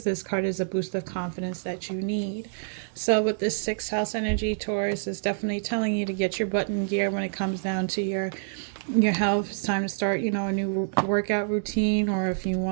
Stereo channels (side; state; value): left; silent; 60 dB below the other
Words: This card is a boost of confidence that you need. So with this 6th house energy, Taurus is definitely telling you to get your butt in gear when it comes down to your health. It's time to start, a new workout routine, or if you